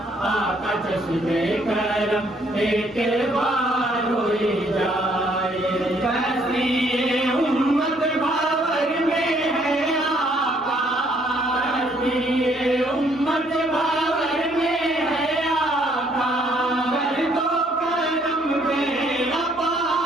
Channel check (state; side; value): normal; both; correlation 0.66